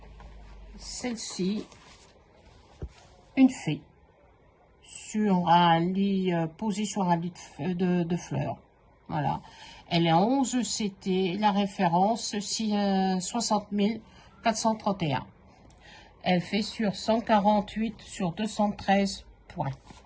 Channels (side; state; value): both; identical; correlation 1.00